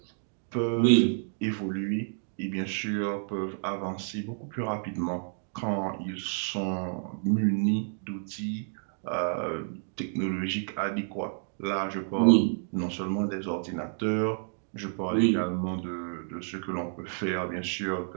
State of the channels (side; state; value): left; silent; digital silence